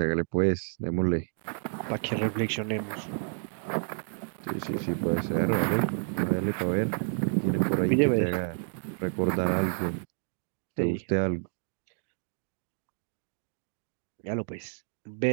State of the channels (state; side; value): silent; left; digital silence